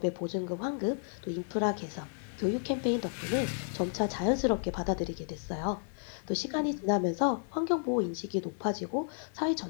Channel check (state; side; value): silent; right; digital silence